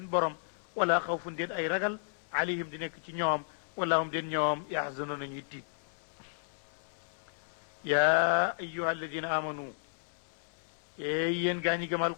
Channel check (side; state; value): right; silent; 56 dB below the other